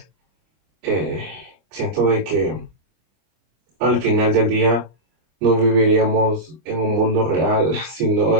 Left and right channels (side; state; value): left; late; 25 ms